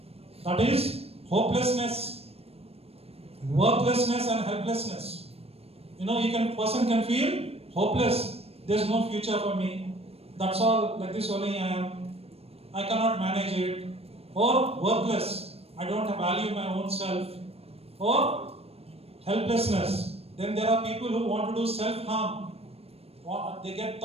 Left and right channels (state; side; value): late; left; 0.29 ms